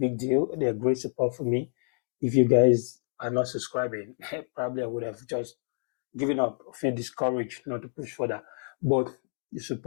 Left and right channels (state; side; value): silent; right; digital silence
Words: deal. They're great support for me. If you guys are not subscribing, probably I would have just given up, feel discouraged not to push further. But the